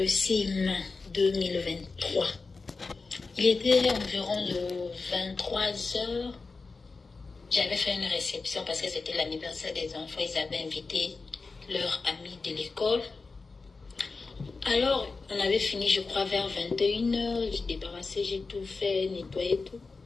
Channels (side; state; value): right; quieter; 4.1 dB